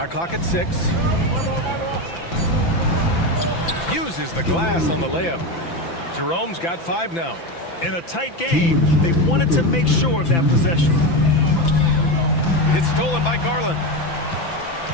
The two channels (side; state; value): right; late; 5.9 ms